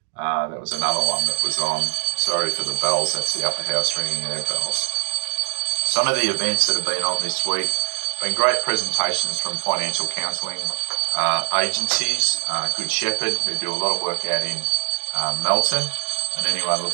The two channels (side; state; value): left; silent; digital silence